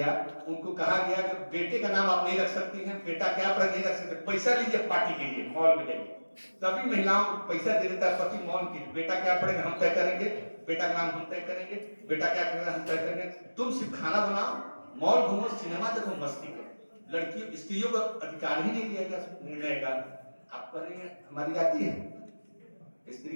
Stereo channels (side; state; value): both; inverted; correlation -1.00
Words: उनको कहा गया कि बेटे का नाम आप नहीं रख सकती हैं, बेटा क्या पर नहीं रख सकते, पैसा लीजिए पार्टी के लिए, मॉल में जाइए। सभी महिलाओं को पैसा दे देता है पति, मॉल की, बेटा क्या पढ़ेगा हम तय करेंगे, बेटा का नाम हम तय करेंगे, बेटा क्या करेगा हम तय करेंगे। तुम सिर्फ खाना बनाओ, मॉल घूमो, सिनेमा देखो, मस्ती करो। लड़कियों स्त्रियों को अधिकार ही नहीं दिया गया निर्णय का। आप करेंगे, हमारी जाति है स्त्री